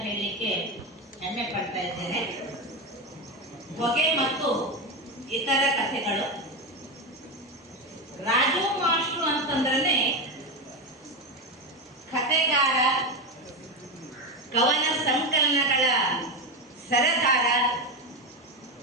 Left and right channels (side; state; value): both; normal; correlation 0.14